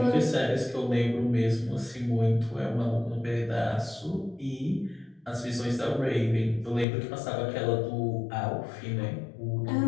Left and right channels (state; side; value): drops out; right; at 6.9 s